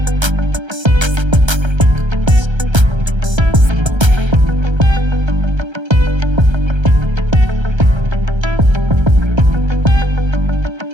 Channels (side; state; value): left; late; 1.3 ms